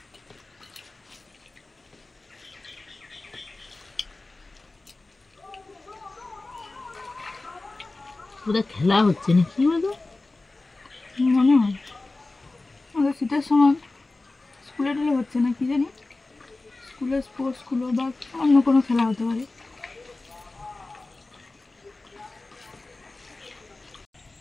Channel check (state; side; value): quieter; right; 3.2 dB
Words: ওদের খেলা হচ্ছে না কি বলতো, মনে হয় আমাদের শীতের সময় স্কুলে টুলে হচ্ছে না কি জানি, স্কুলের স্পোর্টসগুলো বা অন্য কোনো খেলা হতে পারে।